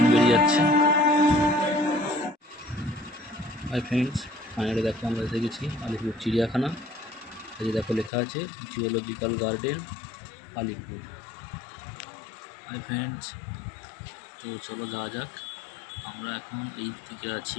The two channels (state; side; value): drops out; right; at 8.1 s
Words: বেরিয়ে যাচ্ছে। হাই ফ্রেন্ডস, ফাইনালি দেখো আমরা এসে গেছি আলিপুর চিড়িয়াখানা। এই দেখো লেখা আছে zoological garden Alipore. Hi friends, তো চলো যাওয়া যাক। আমরা এখন এই দিকে